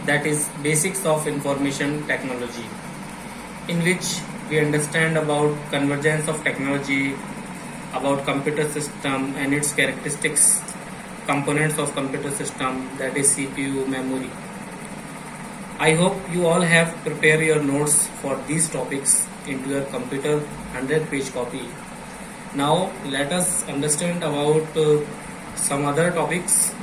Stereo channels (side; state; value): both; identical; correlation 1.00